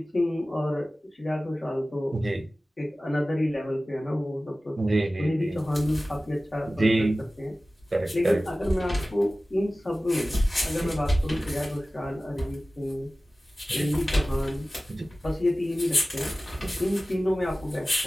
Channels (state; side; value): normal; both; correlation 0.97